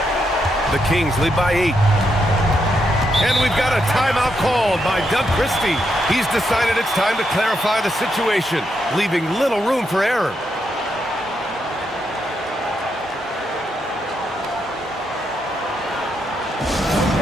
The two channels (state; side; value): normal; both; correlation 0.81